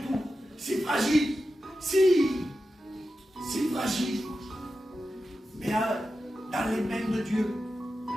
tout. C'est fragile, si fragile. Mais dans les mains de Dieu.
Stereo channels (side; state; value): both; normal; correlation 0.91